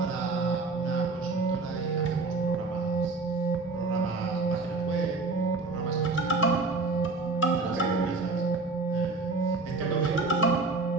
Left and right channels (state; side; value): quieter; left; 3.7 dB